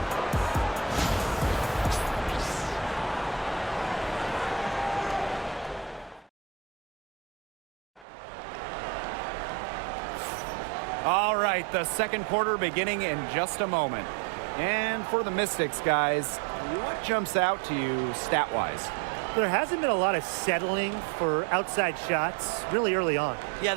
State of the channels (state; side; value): drops out; left; at 8.1 s